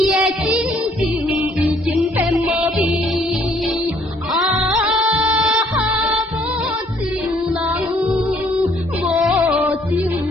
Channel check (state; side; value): normal; both; correlation 0.64